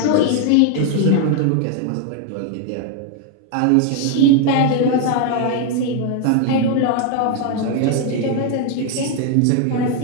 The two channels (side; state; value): both; different; correlation 0.01